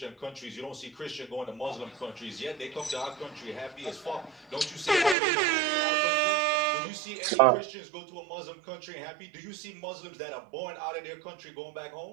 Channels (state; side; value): drops out; left; at 5.2 s